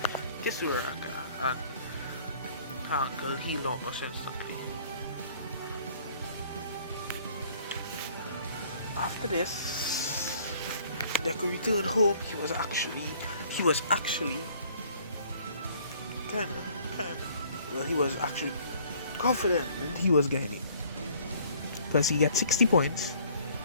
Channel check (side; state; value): both; inverted; correlation -0.56